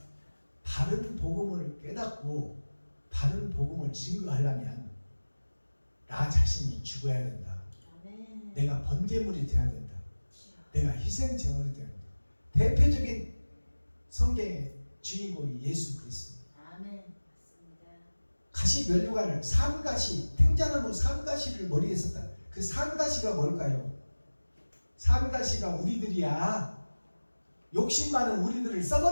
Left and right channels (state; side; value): inverted; both; correlation -1.00